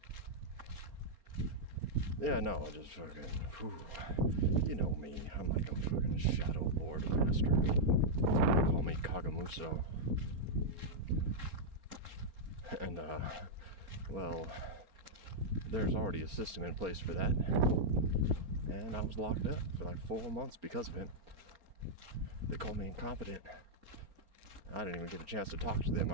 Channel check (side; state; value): left; late; 4.4 ms